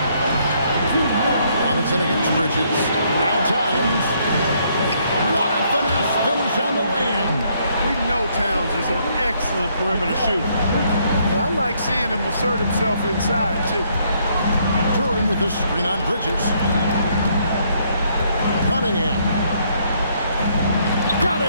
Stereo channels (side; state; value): both; inverted; correlation -0.70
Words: Robinson against Bridges. Now Towns. What a finesse finish on the lane. We know Towns is an excellent perimeter shooter. But I like seeing him assert himself inside, too. Turin with the screen on Bridges. Cunningham. Got